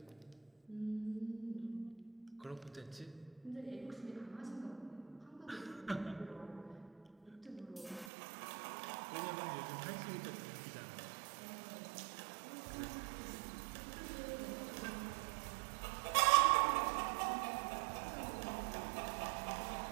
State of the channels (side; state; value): left; drops out; at 8.1 s